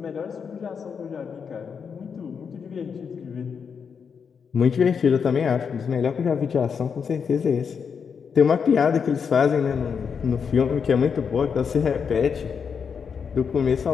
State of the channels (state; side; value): quieter; right; 6.4 dB